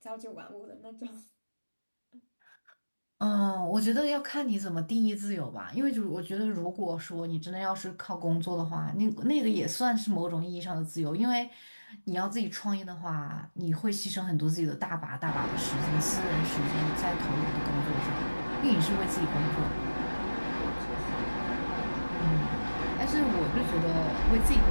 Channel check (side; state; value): both; inverted; correlation -1.00